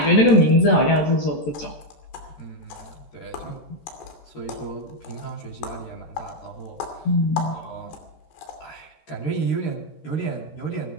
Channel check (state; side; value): late; right; 13 ms